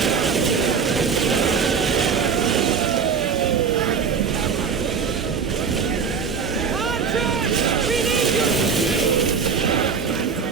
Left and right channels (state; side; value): quieter; left; 6.1 dB